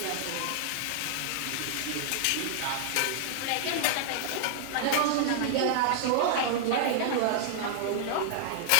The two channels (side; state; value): both; different; correlation -0.01